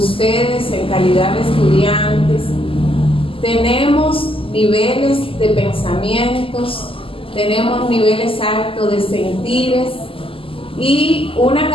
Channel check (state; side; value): late; right; 0.26 ms